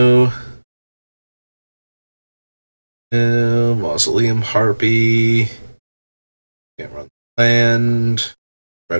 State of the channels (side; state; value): both; inverted; correlation -1.00